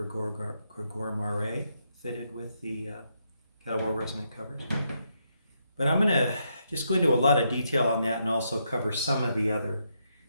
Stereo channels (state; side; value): inverted; both; correlation -0.79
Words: Maret fitted with the Kettlewell Resonant Covers. But I'm going to just go into a lot of detail on that and also cover some of the other